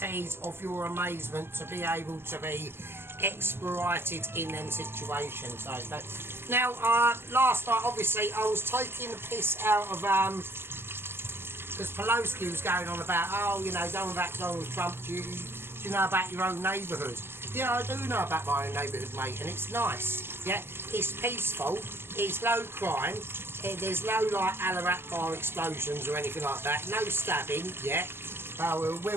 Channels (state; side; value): late; left; 0.11 ms